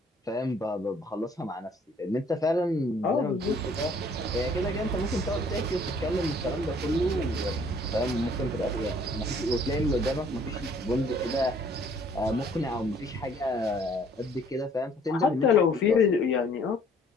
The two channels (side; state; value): both; normal; correlation 0.58